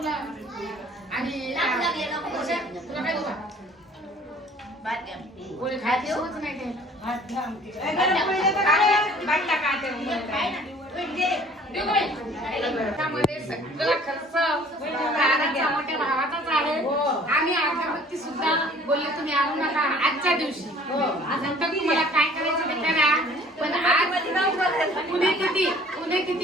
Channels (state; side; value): normal; both; correlation 0.53